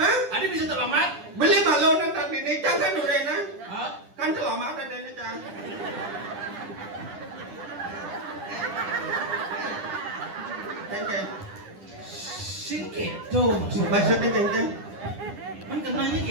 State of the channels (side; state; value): left; late; 10 ms